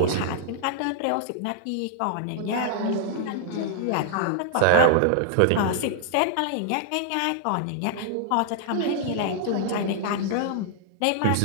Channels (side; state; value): both; different; correlation -0.01